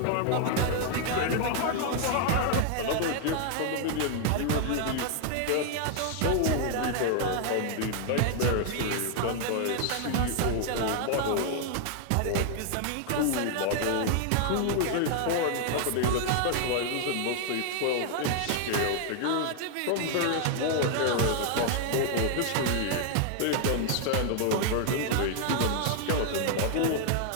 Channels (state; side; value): different; both; correlation 0.00